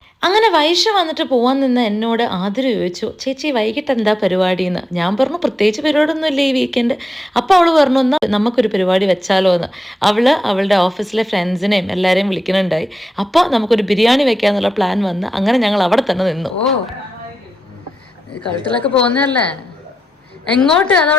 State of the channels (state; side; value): normal; both; correlation 0.88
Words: അങ്ങനെ വൈഷു വന്നിട്ട് പോവാൻ നിന്ന് എന്നോട് ആതിര ചോദിച്ചു, ചേച്ചി വൈകിട്ട് എന്താ പരിപാടിയെന്ന്. ഞാൻ പറഞ്ഞു പ്രത്യേകിച്ച് പരിപാടിയൊന്നും ഇല്ല ഈ വീക്കെൻഡ്. അപ്പോൾ അവൾ പറഞ്ഞു എന്നാൽ നമുക്കൊരു പരിപാടി വെച്ചാലോ എന്ന്. അവളുടെ ഓഫീസിലെ ഫ്രണ്ട്സിനെയും എല്ലാവരെയും വിളിക്കുന്നുണ്ടായി. അപ്പോൾ നമുക്കൊരു ബിരിയാണി വെക്കാന്നുള്ള പ്ലാൻ വന്ന് അങ്ങനെ ഞങ്ങൾ അവിടെ തന്നെ നിന്നു. കഴുത്തിലൊക്കെ പോകുന്നതല്ലേ, എങ്ങോട്ട്